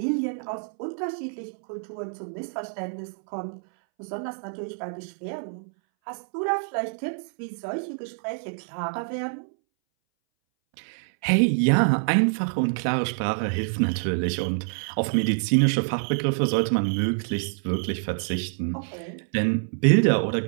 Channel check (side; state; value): left; silent; 61 dB below the other